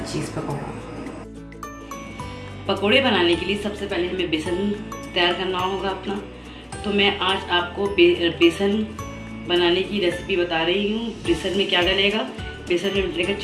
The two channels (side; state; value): both; identical; correlation 1.00